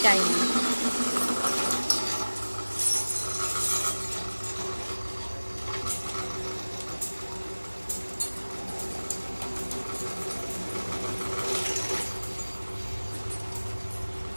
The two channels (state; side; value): inverted; both; correlation -1.00